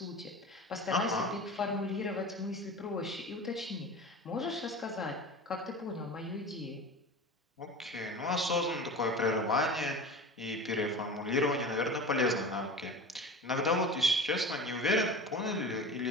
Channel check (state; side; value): normal; both; correlation 0.34